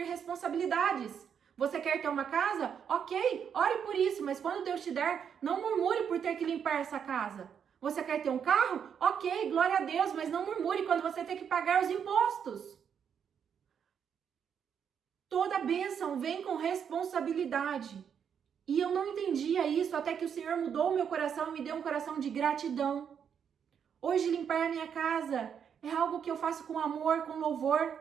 responsabilidades. Você quer ter uma casa? Ok, ore por isso, mas quando Deus te der, não murmure por ter que limpar essa casa. Você quer ter um carro? Ok, glória a Deus, mas não murmure quando você tem que pagar os impostos. Toda bênção vem com responsabilidade. E eu não entendia isso até que o Senhor mudou o meu coração e me deu um coração de gratidão. Hoje limpar a minha casa é algo que eu faço com amor, com louvor.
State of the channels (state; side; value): quieter; left; 7.7 dB